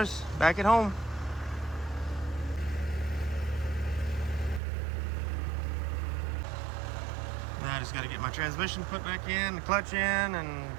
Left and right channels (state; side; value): drops out; left; at 4.6 s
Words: back at home. Now I just got to get my transmission put back in, the clutch in, and